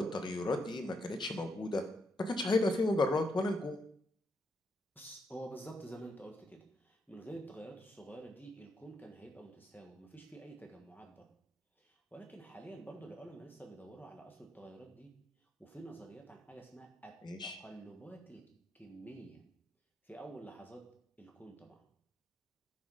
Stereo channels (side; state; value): both; normal; correlation 0.79